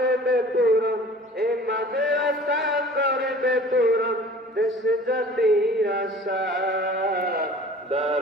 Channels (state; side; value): normal; both; correlation 0.46